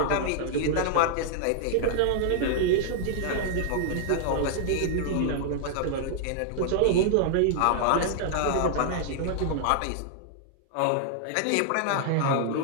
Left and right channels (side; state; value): both; different; correlation -0.01